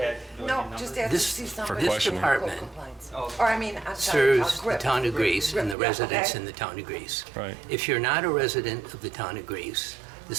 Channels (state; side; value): drops out; left; at 5.8 s